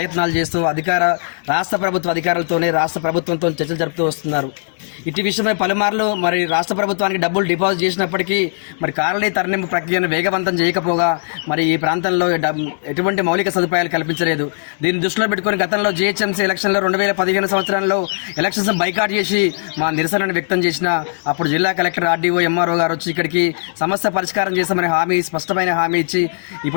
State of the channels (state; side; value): silent; right; digital silence